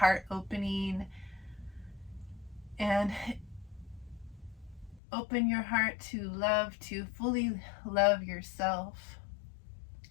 opening. And open your heart to love, to fully love yourself,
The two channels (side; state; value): right; drops out; at 5.0 s